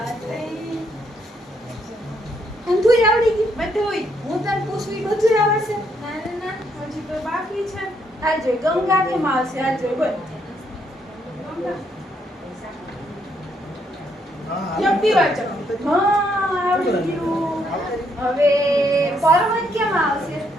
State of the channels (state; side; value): normal; both; correlation 0.73